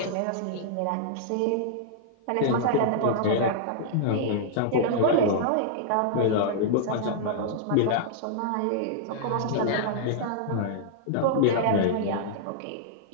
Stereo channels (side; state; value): both; different; correlation -0.01